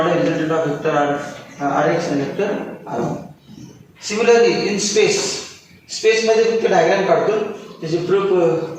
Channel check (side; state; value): both; identical; correlation 1.00